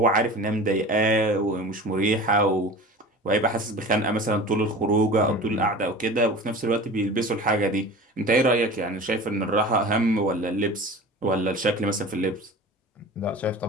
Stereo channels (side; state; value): both; normal; correlation 0.36